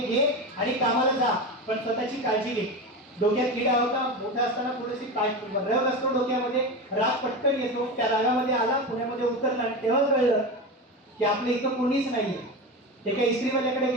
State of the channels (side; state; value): both; normal; correlation 0.23